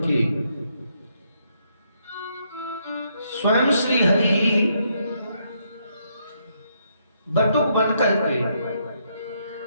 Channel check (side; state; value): both; inverted; correlation -0.75